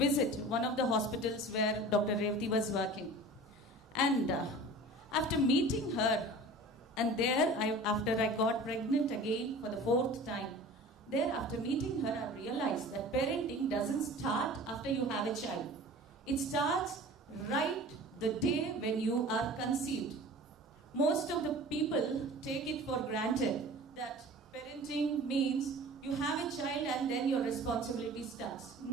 one of the hospitals where Dr. Revati was working, and after meeting her. And there, after I got pregnant again for the 4th time, there after meeting her, I realized that parenting doesn't start after you have a child. It starts right the day when you are conceived. Most of the people take it for granted that parenting means you have a child and then your responsibility starts.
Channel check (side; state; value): both; normal; correlation 0.40